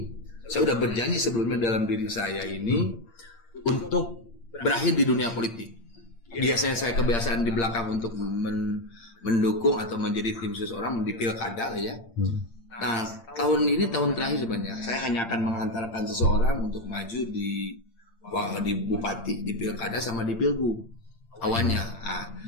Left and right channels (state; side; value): late; right; 8.7 ms